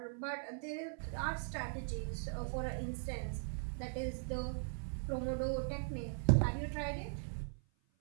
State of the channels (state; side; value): silent; left; 51 dB below the other